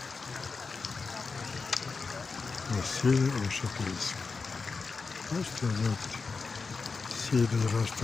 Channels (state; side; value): quieter; right; 4.5 dB